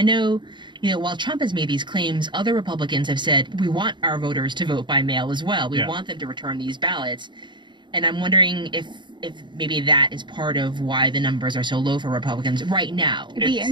know, while Trump has made these claims, other Republicans have said, we want our voters to vote by mail as well. We want them to return these ballots. And I'm wondering if maybe that is part of why the numbers are so low for Republicans right now. It'd be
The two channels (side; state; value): left; late; 0.23 ms